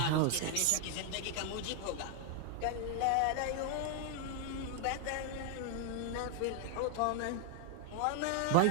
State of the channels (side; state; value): both; different; correlation 0.00